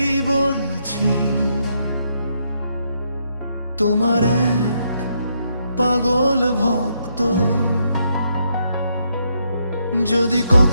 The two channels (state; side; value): inverted; both; correlation -0.77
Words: বলছি, তোমার এক পাগল ভক্ত। যদি